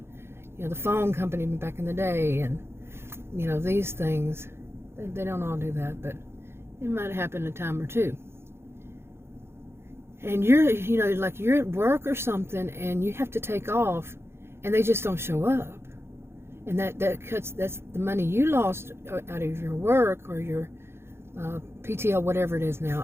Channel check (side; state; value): left; late; 0.12 ms